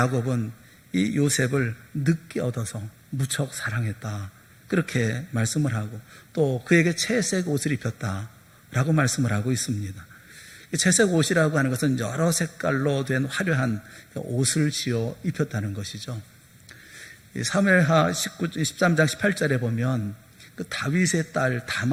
이 요셉을 늦게 얻어서 무척 사랑했다, 그렇게 말씀을 하고, 또 그에게 채색 옷을 입혔다 라고 말씀을 하고 있습니다. 채색 옷이라고 하는 것은 여러 색깔로 된 화려한 옷을 지어 입혔다는 것이죠. 사무엘하 13장 18절에 보면 그 다윗의 딸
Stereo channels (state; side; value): identical; both; correlation 1.00